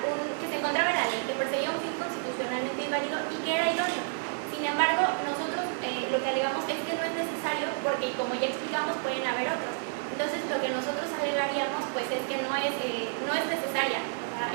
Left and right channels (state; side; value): silent; left; 58 dB below the other